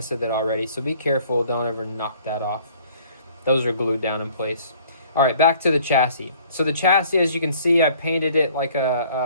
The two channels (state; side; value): inverted; both; correlation -0.56